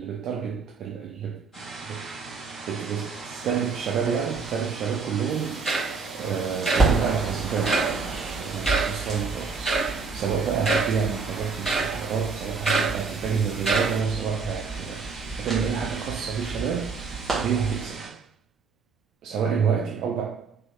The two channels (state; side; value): quieter; left; 4.9 dB